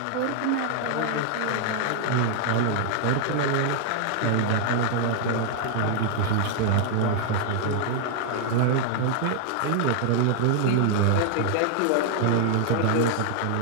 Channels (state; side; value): different; both; correlation 0.00